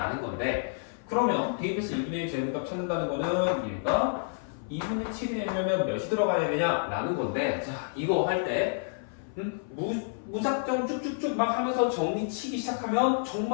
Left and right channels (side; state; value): right; silent; 55 dB below the other